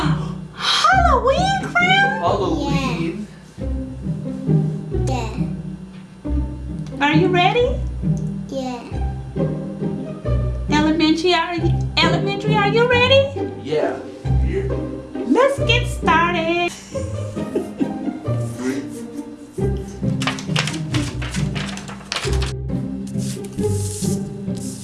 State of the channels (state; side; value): identical; both; correlation 1.00